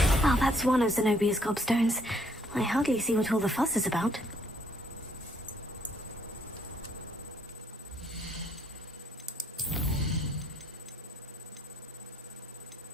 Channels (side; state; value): both; normal; correlation 0.67